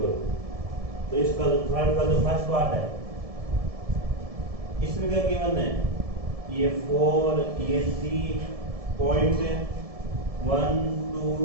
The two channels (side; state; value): left; late; 1.7 ms